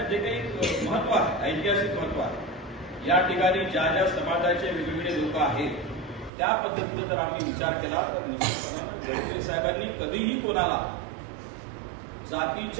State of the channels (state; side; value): drops out; left; at 6.3 s